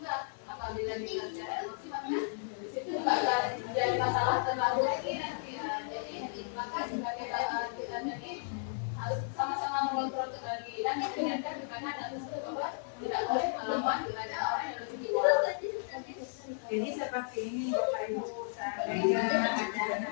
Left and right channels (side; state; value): right; silent; digital silence